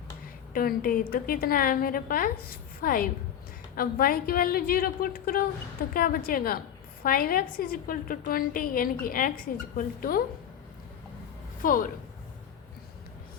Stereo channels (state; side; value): quieter; right; 9.5 dB